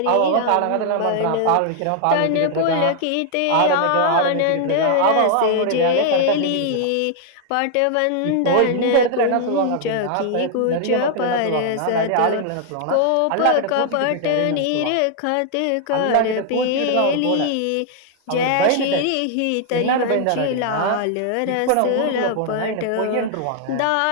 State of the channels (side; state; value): both; different; correlation 0.00